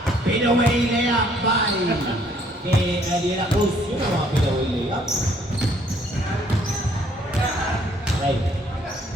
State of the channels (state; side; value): normal; both; correlation 0.63